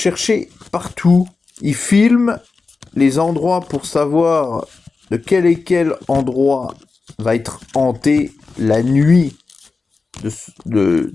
partout. Ils filment les endroits pour savoir de quel et quel endroit va être hanté la nuit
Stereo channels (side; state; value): right; quieter; 4.2 dB